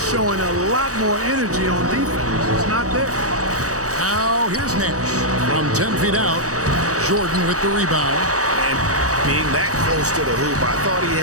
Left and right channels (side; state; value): left; late; 0.66 ms